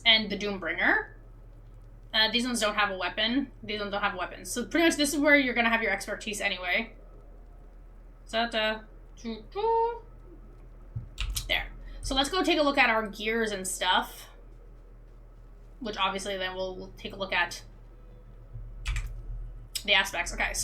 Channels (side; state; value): both; identical; correlation 1.00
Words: and the Doombringer. These ones don't have a weapon. These ones don't have weapons. So pretty much this is where you're going to have your expertise anyway. There. So let's go take a look at our gears and stuff. Which obviously then we'll take a look at the aspects. Okay,